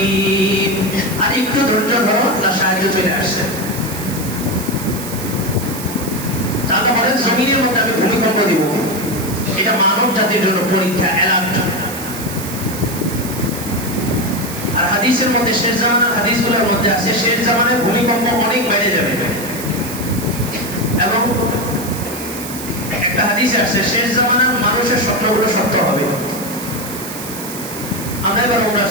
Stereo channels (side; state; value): right; noise; hiss, 10 dB below the sound